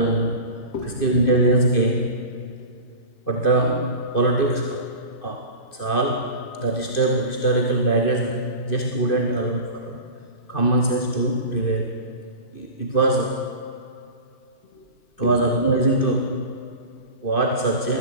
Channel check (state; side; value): late; right; 2.5 ms